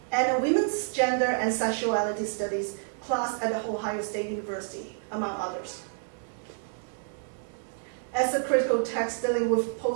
and a women's gender and sexuality studies class at the Ohio State University, among others. As a critical text dealing with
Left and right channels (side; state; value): left; silent; digital silence